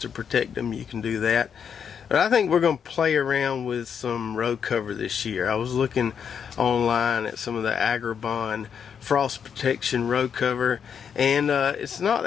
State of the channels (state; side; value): quieter; right; 7.4 dB